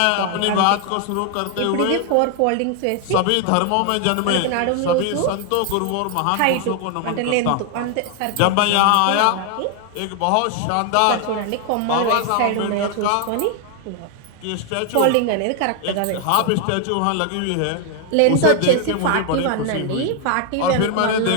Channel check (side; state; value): both; different; correlation 0.00